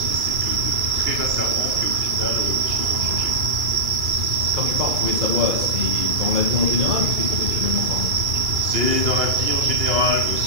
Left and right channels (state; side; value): late; left; 2.3 ms